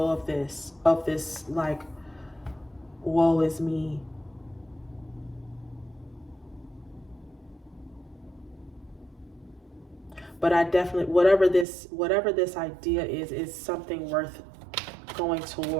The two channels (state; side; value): drops out; left; at 11.7 s